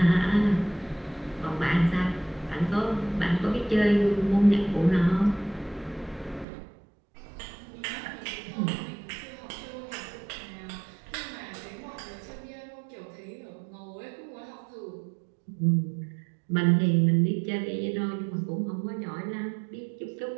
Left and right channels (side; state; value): left; drops out; at 6.5 s